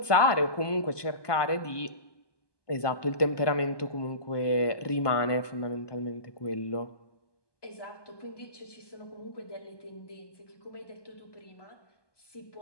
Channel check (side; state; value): right; late; 1.2 ms